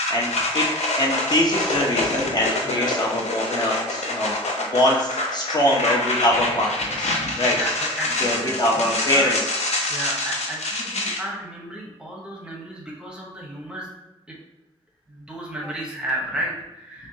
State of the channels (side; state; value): both; normal; correlation 0.26